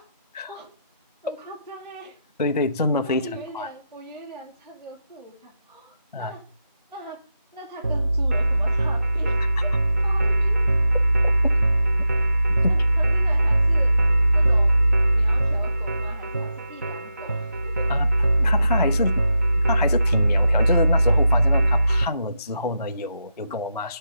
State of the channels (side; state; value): both; inverted; correlation -0.88